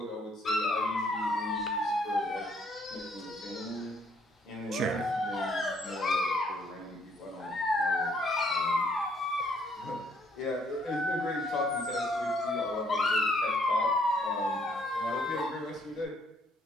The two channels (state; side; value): normal; both; correlation 0.66